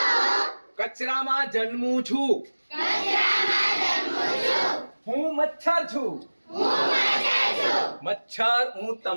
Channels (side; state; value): both; inverted; correlation -1.00